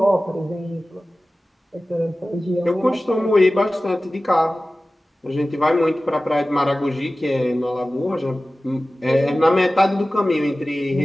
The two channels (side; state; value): both; normal; correlation 0.96